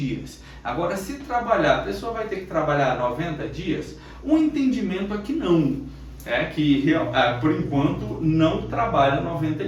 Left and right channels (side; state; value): both; identical; correlation 1.00